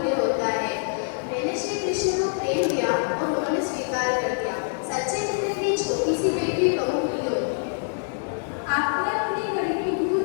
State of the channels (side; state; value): right; silent; 62 dB below the other